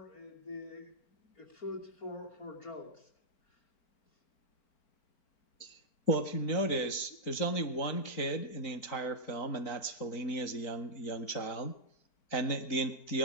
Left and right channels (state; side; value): late; right; 4.4 ms